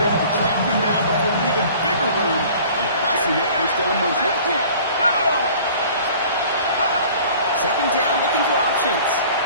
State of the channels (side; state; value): both; inverted; correlation -0.48